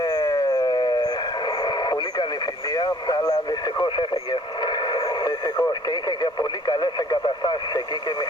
πολύ καλή φιλία, αλλά δυστυχώς έφυγε. Δυστυχώς, και είχε και πολύ καλές εγκαταστάσεις εκεί και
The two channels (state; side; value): normal; both; correlation 0.55